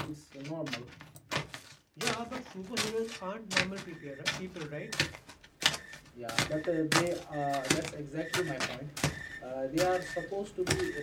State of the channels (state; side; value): identical; both; correlation 1.00